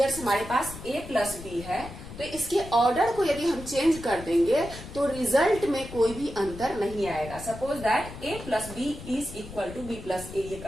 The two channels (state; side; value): noise; left; rumble, 13 dB below the sound